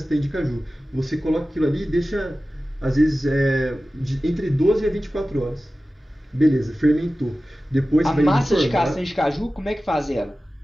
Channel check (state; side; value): normal; both; correlation 0.95